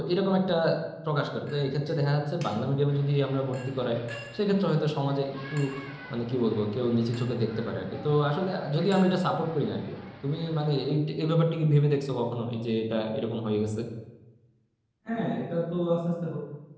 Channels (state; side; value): identical; both; correlation 1.00